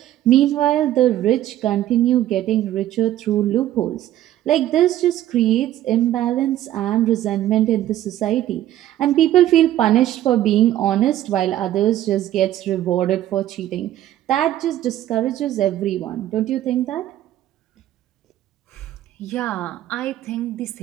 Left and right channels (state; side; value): quieter; left; 13.0 dB